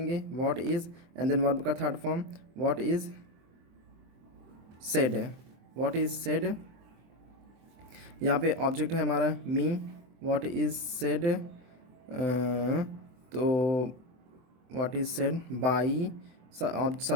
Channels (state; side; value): late; left; 24 ms